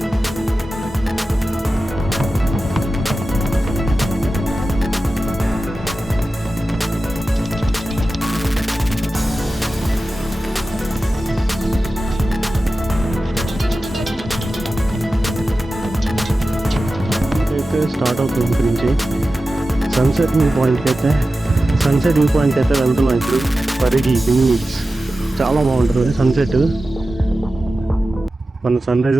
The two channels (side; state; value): both; normal; correlation 0.94